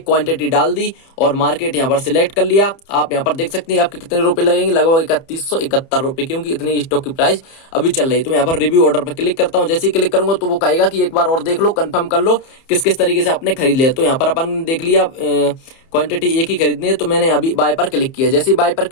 क्वांटिटी डाल दी और मार्केट यहाँ पर सिलेक्ट कर लिया। आप यहाँ पर देख सकते हैं आपके कितने रुपए लगेंगे, लगभग 3171 रुपए, क्योंकि इतनी स्टॉक की प्राइस अभी चल रही है। तो मैं यहाँ पर रिव्यू ऑर्डर पर क्लिक करता हूँ। जैसे ही क्लिक करूंगा तो वो कहेगा कि एक बार और देख लो, कंफर्म कर लो किस किस तरीके से आपने खरीद लिया। तो यहाँ पर अपन देख लिया क्वांटिटी एक ही खरीदनी है, तो मैंने अभी बाय पर क्लिक किया। जैसे ही बाय पर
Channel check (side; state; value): right; late; 30 ms